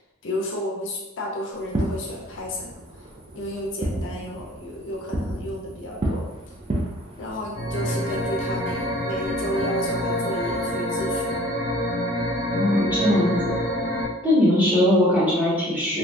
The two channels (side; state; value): both; normal; correlation 0.52